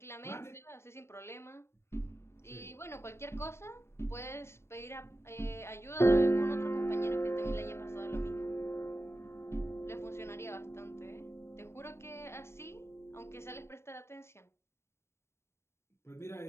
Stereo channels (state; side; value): late; right; 0.13 ms